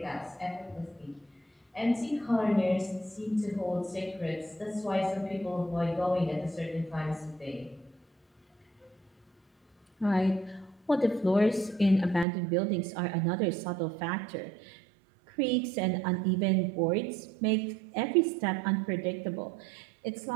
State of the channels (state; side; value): drops out; left; at 12.2 s